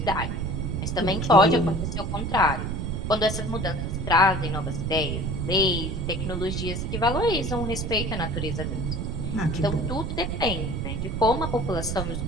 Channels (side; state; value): right; noise; rumble, 2 dB below the sound